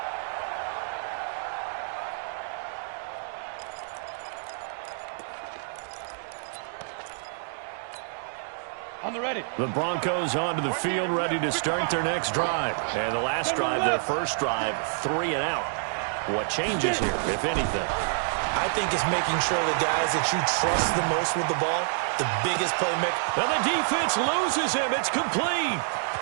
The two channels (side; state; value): left; silent; digital silence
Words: On the ready. The Broncos onto the field, ready to start their next drive. And the last drive, their first drive, 3 and out. What changes here, if anything? I think it's making sure the guys that you trust the most with the ball, the biggest playmaker. And the defense loses him. It's complete.